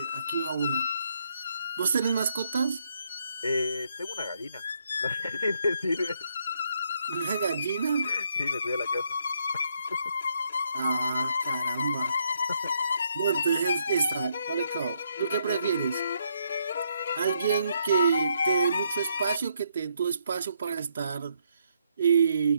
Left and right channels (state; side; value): inverted; both; correlation -0.74